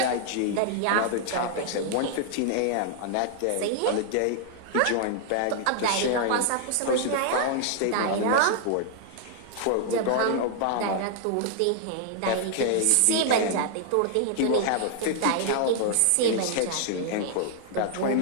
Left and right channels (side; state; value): both; different; correlation -0.01